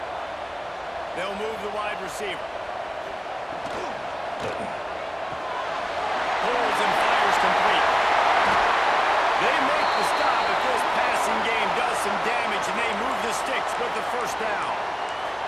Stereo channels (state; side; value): identical; both; correlation 1.00